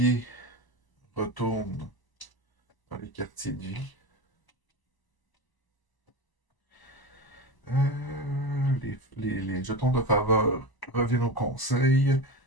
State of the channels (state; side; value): late; right; 1.0 ms